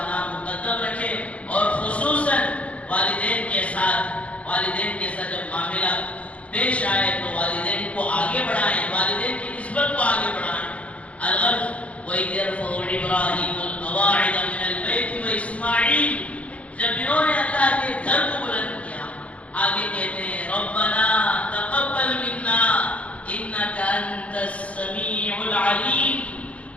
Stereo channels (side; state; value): right; late; 0.064 ms